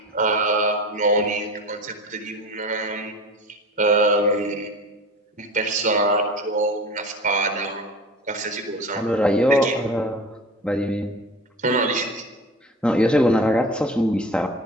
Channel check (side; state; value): both; normal; correlation 0.35